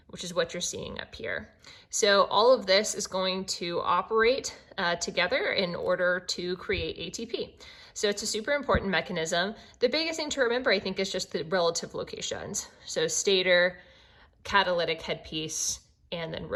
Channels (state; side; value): identical; both; correlation 1.00